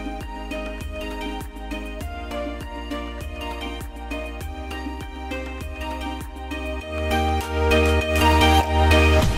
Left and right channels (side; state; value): both; identical; correlation 1.00